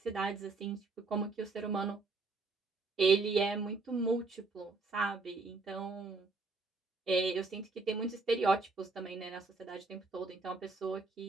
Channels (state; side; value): quieter; left; 3.8 dB